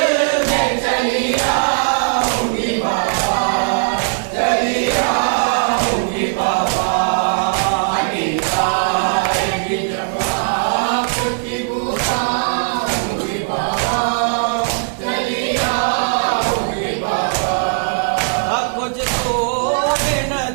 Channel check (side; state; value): left; silent; 60 dB below the other